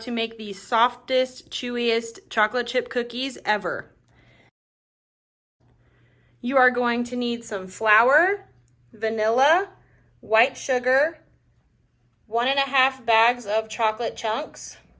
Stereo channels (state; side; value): identical; both; correlation 1.00